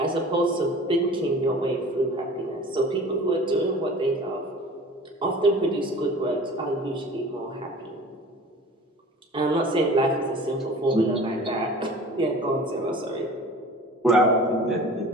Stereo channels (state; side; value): normal; both; correlation 0.42